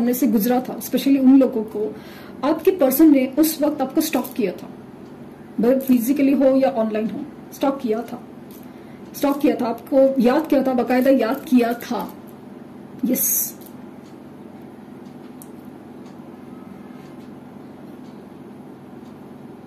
से गुजरा था, स्पेशली उन लोगों को आपके पर्सन ने उस वक्त आपको स्टॉक किया था, भले फिजिकली हो या ऑनलाइन हो, स्टॉक किया था, आपको याद किया था, बाकायदा याद किया था। यस,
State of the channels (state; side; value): identical; both; correlation 1.00